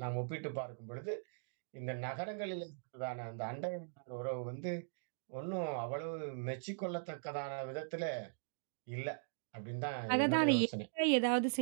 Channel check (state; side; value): silent; left; digital silence